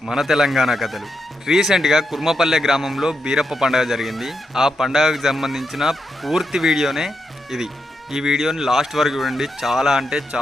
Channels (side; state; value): both; normal; correlation 0.84